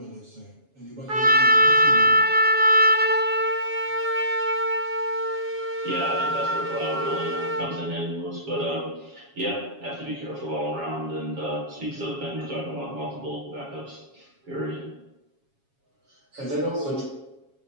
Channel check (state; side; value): late; left; 7.2 ms